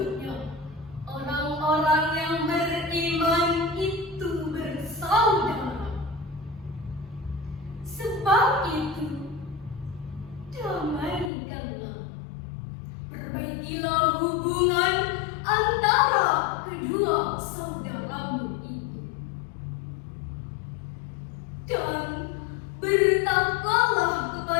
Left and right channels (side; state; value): right; drops out; at 11.3 s